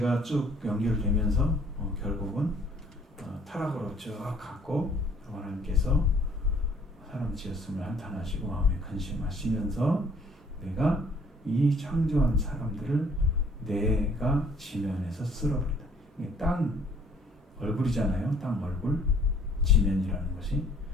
쭉 연결되면서 결국은 타락으로 쭉 갔고 하나님께서 사람 지었음을 한탄하시고 마음에 근심하시면서 내가 이 창조한 사람들을 내가 지면에서 쓸어버린다. 이게 땅 얼굴이잖아요. 땅 얼굴 지면이라는 것이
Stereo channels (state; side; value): normal; both; correlation 0.59